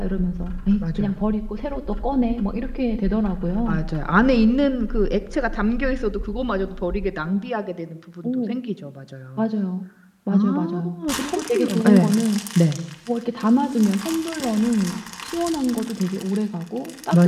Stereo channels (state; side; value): identical; both; correlation 1.00